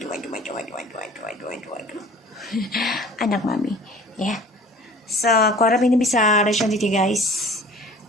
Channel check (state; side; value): normal; both; correlation 0.45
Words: Aduh. Anak mami ya. So aku harap ini bisa respon you guys,